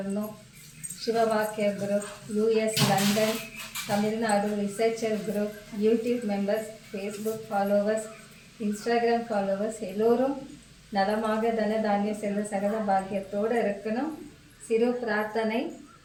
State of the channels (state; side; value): identical; both; correlation 1.00